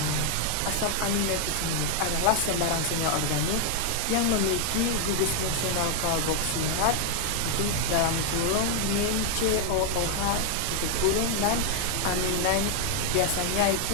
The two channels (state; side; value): different; both; correlation 0.00